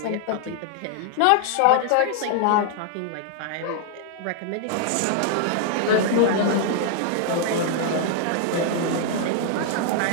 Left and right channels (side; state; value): both; different; correlation -0.01